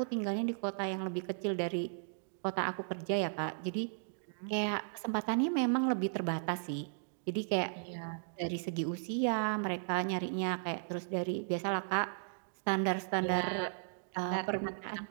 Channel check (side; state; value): left; silent; digital silence